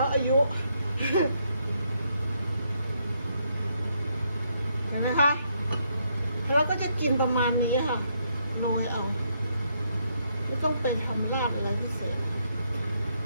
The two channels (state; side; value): inverted; both; correlation -0.75